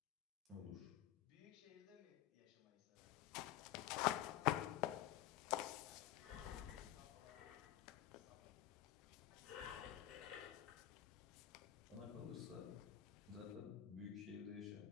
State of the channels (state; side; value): quieter; right; 13.5 dB